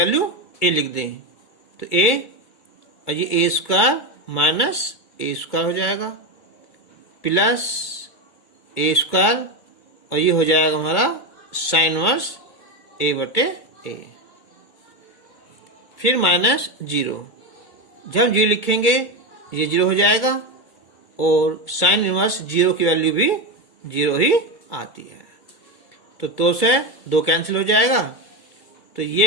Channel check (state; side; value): late; right; 2.2 ms